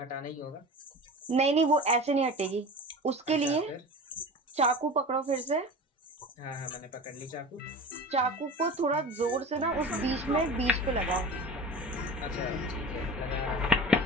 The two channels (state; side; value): normal; both; correlation 0.34